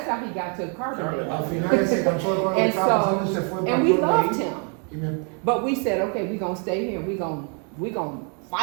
how he got to Carbondale. And we loved him. But we said, okay, we're gonna stay here. We're gonna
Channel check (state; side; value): quieter; left; 39.8 dB